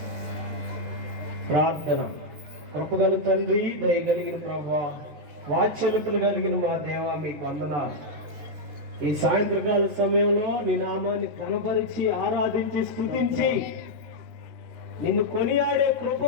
ప్రార్థన. కృపగల తండ్రి, దయగలిగిన ప్రభువా, వాత్సల్యతలు కలిగిన మా దేవా, మీకు వందనాలు. ఈ సాయంత్రకాల సమయంలో నీ నామాన్ని కనపరిచి ఆరాధించి స్తుతించి నిన్ను కొనియాడే కృప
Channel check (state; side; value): late; left; 13 ms